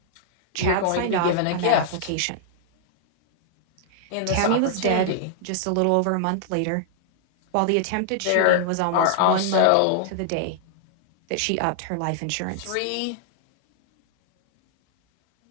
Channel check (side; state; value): both; different; correlation -0.01